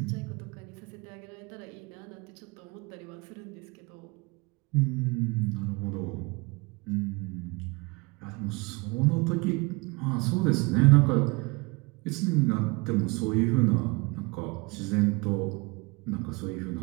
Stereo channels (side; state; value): left; quieter; 27.0 dB